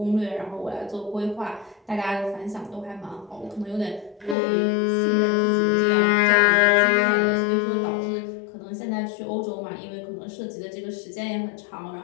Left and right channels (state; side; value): drops out; right; at 4.4 s